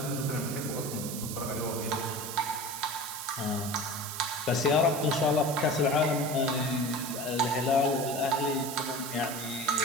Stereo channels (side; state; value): right; noise; hiss, 7 dB below the sound